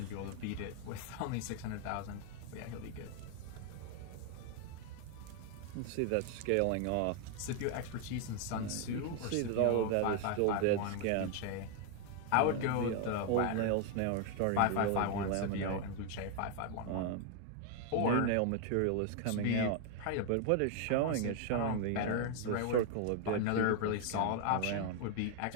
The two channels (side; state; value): both; different; correlation 0.00